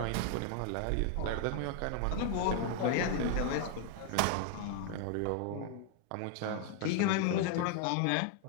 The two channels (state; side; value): different; both; correlation 0.00